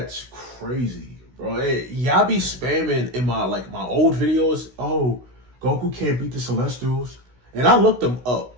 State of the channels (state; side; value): late; left; 16 ms